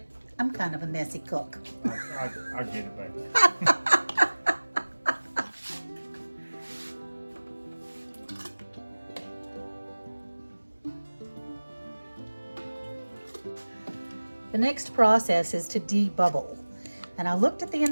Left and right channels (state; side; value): inverted; both; correlation -1.00